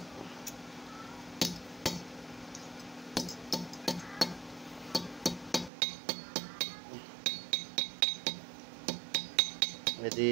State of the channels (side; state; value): left; drops out; at 5.7 s